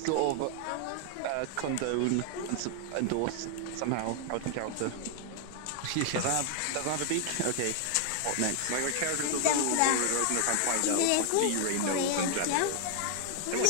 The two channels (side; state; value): both; different; correlation 0.00